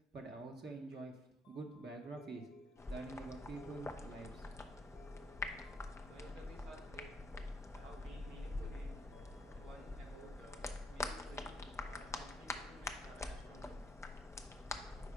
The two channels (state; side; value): normal; both; correlation 0.71